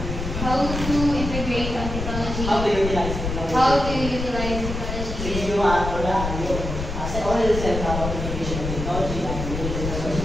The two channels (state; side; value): noise; left; rumble, 5 dB below the sound